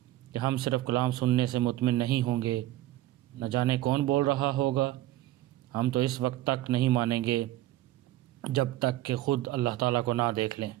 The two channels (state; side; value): quieter; left; 15.4 dB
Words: کہ ہم صرف کلام سننے سے مطمئن نہیں ہوں گے، نہ جانے کون بول رہا ہوگا، ہم تو اس وقت تک نہیں مانیں گے جب تک کہ خود اللہ تعالیٰ کو نہ دیکھ لیں۔